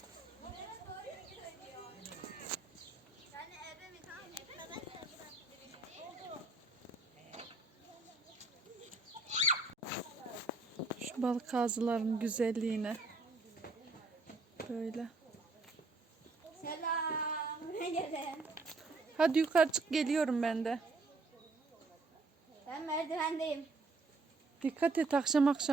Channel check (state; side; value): quieter; left; 3.3 dB